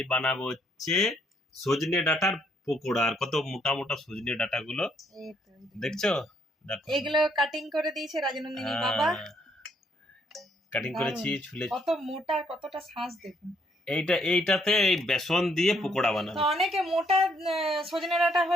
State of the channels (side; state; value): both; normal; correlation 0.69